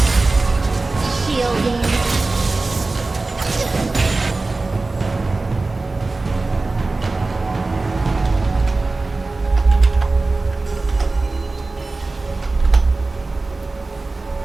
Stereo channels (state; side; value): quieter; left; 3.4 dB